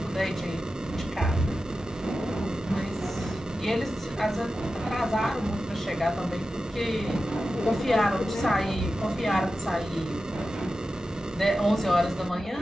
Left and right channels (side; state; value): both; normal; correlation 0.93